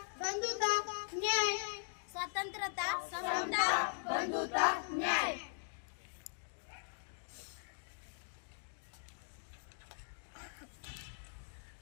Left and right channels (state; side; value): silent; right; digital silence